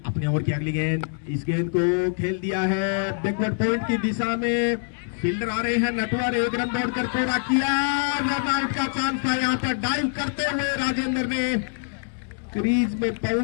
अपने ओवर की अगली गेंद, इस गेंद को खेल दिया है बैकवर्ड पॉइंट की दिशा में। फील्डर आ रहे हैं, नटवर 1 रन दौड़कर पूरा किया। रन आउट का चांस था। यहां पर डाइव करते हुए राजेंद्र ने क्रीज में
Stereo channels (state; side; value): silent; right; digital silence